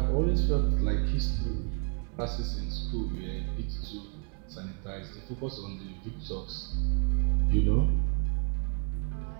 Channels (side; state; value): left; quieter; 39.6 dB